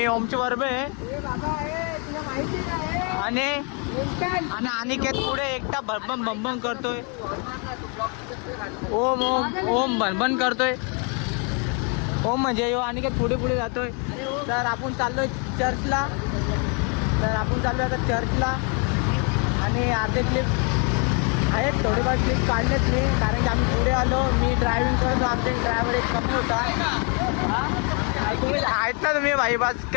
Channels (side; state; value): right; quieter; 36.3 dB